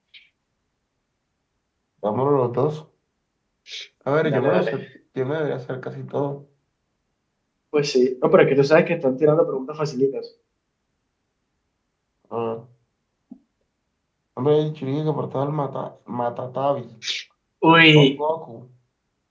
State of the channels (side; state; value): both; identical; correlation 1.00